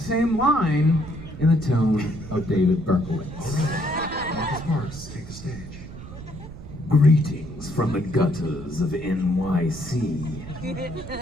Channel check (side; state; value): right; noise; rumble, 13 dB below the sound